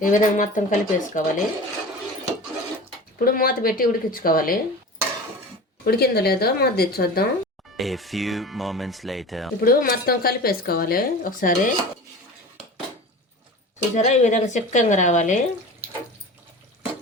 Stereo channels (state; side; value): normal; both; correlation 0.35